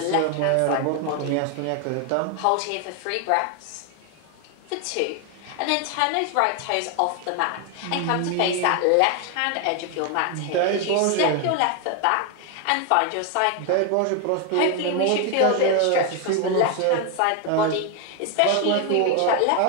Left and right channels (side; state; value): both; different; correlation 0.01